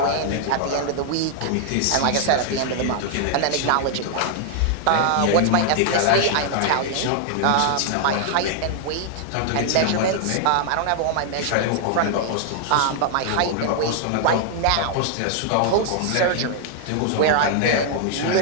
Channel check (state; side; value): different; both; correlation 0.00